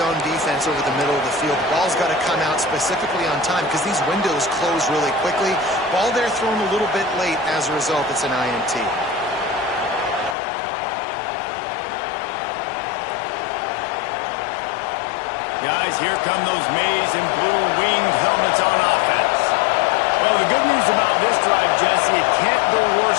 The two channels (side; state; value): right; drops out; at 10.4 s